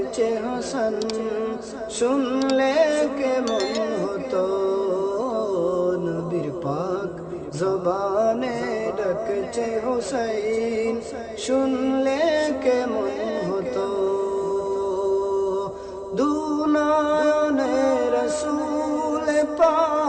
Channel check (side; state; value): both; identical; correlation 1.00